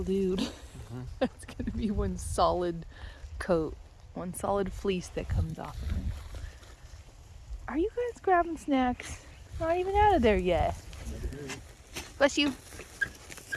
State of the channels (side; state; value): both; identical; correlation 1.00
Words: dude. That's gonna be one solid coat. One solid fleece that comes off of him. Are you guys grabbing snacks? Not even out of there yet. Bless you.